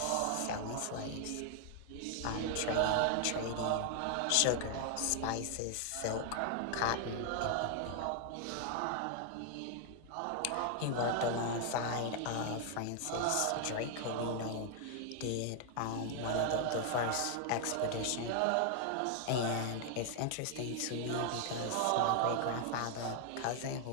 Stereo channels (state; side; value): different; both; correlation 0.00